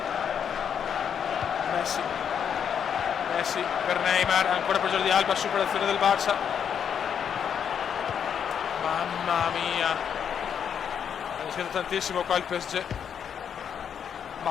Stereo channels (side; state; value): right; quieter; 7.9 dB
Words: Messi per Neymar, ancora per Jordi Alba, superazione del Barça. Mamma mia, ha rischiato tantissimo qua il PSG.